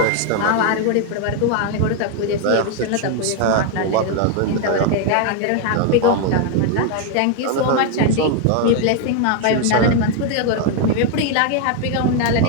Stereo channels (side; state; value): both; different; correlation 0.00